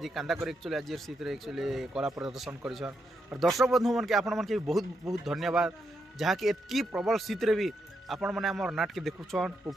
कांदा कर एक्चुअली आज शीत रे एक्चुअली कला प्रदर्शन करिछन और दर्शक बंधु मन के आपण मन के बहुत बहुत धन्यवाद जहा कि एतकी प्रबल शीत रे भी आपण माने हमर नाट के देखुछन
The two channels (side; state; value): both; normal; correlation 0.81